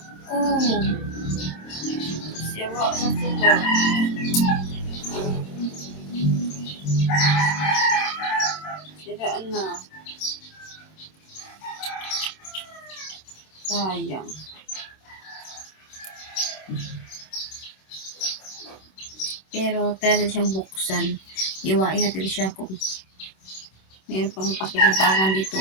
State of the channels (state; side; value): late; right; 26 ms